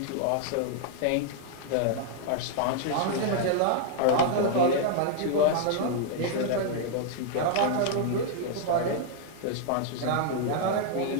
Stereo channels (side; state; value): both; different; correlation 0.00